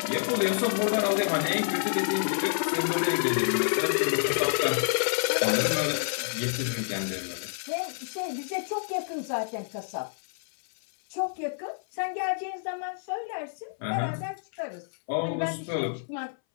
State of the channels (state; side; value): silent; right; 59 dB below the other